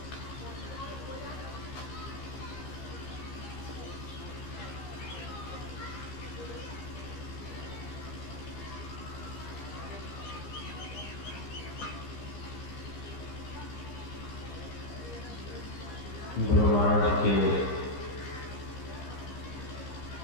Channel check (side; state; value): right; late; 15 ms